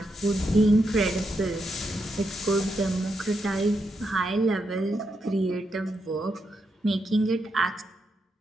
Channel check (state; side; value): normal; both; correlation 0.83